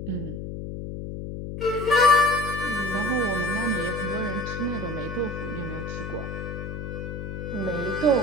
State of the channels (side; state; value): left; noise; hum, 7 dB below the sound